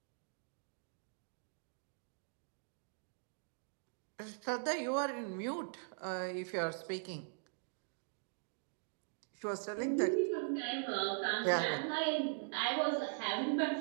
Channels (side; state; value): left; silent; digital silence